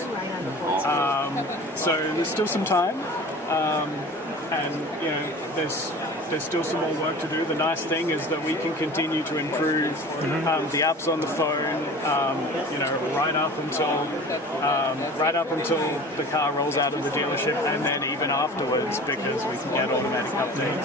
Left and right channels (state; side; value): normal; both; correlation 0.40